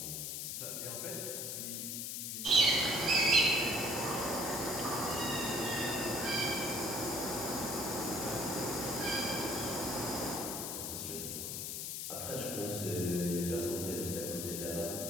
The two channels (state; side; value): noise; left; hiss, 4 dB below the sound